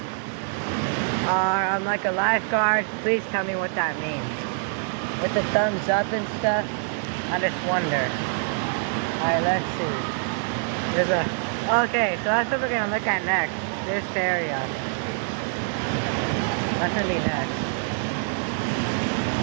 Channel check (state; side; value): silent; left; 60 dB below the other